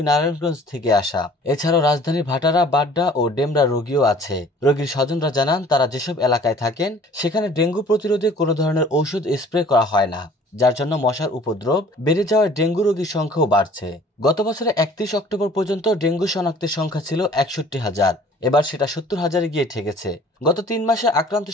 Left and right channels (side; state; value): both; normal; correlation 0.51